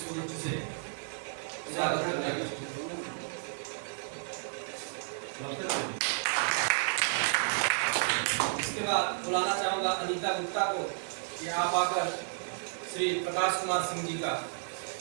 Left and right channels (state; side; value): silent; left; digital silence